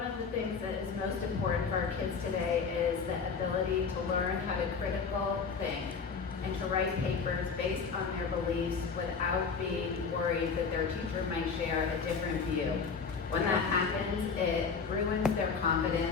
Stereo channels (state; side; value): quieter; right; 5.5 dB